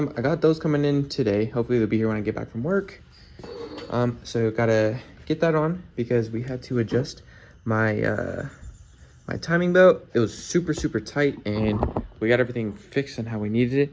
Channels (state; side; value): identical; both; correlation 1.00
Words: got those coming in today. Hopefully they'll be here when I get back from work. So gotta get that on because we had to adjust my my timing belt. It was super tight, and we got everything fixed on how we needed